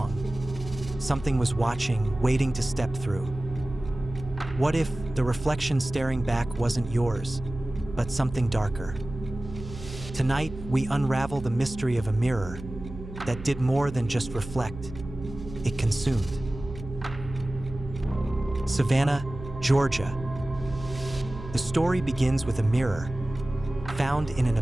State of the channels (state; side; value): noise; right; hum, 12 dB below the sound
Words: something was watching, waiting to step through? What if the reflection staring back wasn't yours, but something darker? Tonight, we unravel the mystery of a mirror that did more than just reflect, it consumed. Savannah, Georgia. The story begins with a mirror found in an